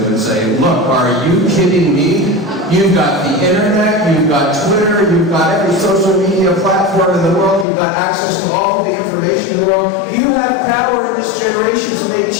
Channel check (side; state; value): right; drops out; at 7.7 s